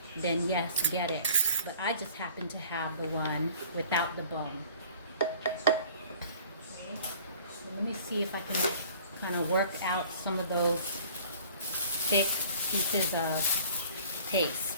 then yes, get it. But I just happen to have the one without the bone. Okay, so let me see if I can kind of work out some of those thick pieces of paste.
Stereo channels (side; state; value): both; inverted; correlation -0.50